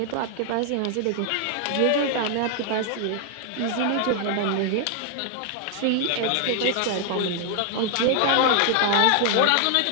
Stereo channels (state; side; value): different; both; correlation 0.00